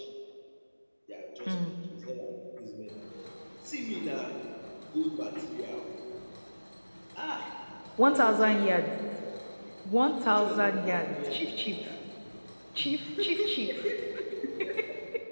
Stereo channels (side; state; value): both; inverted; correlation -1.00